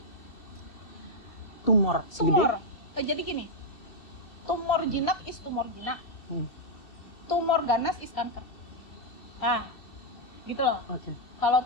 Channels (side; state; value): right; late; 2.7 ms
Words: Tumor segede? Jadi gini, tumor jinak is tumor jinak. Tumor ganas is kanker. Gitu loh. Kalau